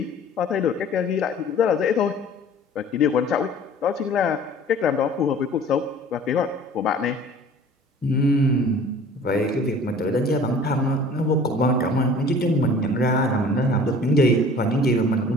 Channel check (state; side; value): normal; both; correlation 0.47